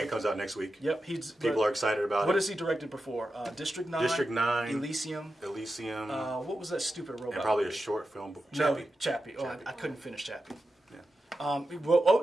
comes out next week. Yep. People are excited about it. What has he directed before? District 9. District 9. Elysium. What was that stupid robot? And probably a short film. Chappie. Chappie. Oh, I couldn't finish Chappie. Yeah. Well,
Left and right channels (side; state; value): both; normal; correlation 0.90